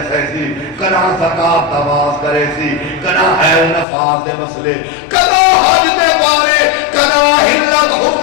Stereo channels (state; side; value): drops out; right; at 3.9 s